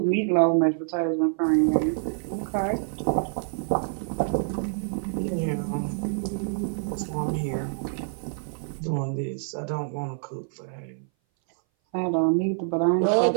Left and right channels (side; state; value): left; silent; 58 dB below the other